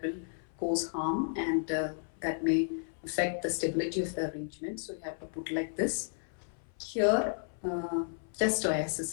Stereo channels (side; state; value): right; silent; 56 dB below the other